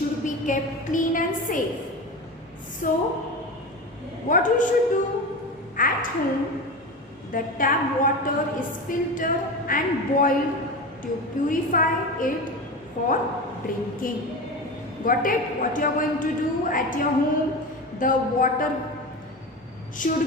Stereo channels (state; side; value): normal; both; correlation 0.25